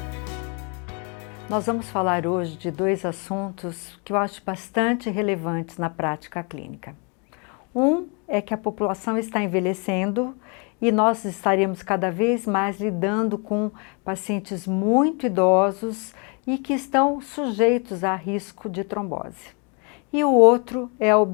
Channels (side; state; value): right; quieter; 34.7 dB